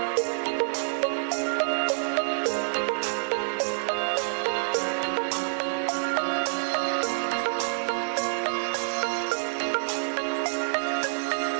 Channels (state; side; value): silent; left; 60 dB below the other